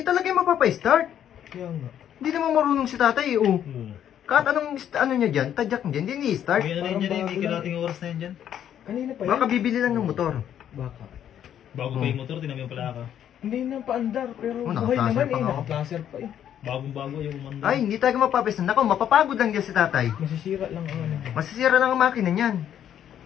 talaga yung mapapa-start. Kaya nga. Hindi naman marunong si tatay, oh. Kahit anong, ano niya dyan, tadyak niya dyan, hindi i-start. May ano rin dyan eh, may kalating oras na yan dyan. Kanina pa yan. Baka bibili lang ng motor. Baka. Bago pa yung motor, tinami yung palaka. Hindi na paandar, pero Oh, buhay naka-placer naman pa eh. nga. Naka-placer pa eh. Bagong-bago yung umanda. Ay, hindi talaga mapapa-start. Nako, mapapagod lang dyan si tatay. Masisira lang ang ano. Masisira lang ang makina niyan.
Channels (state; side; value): quieter; right; 10.0 dB